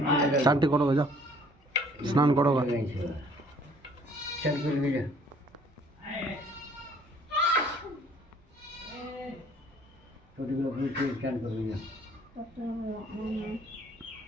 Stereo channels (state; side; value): normal; both; correlation 0.58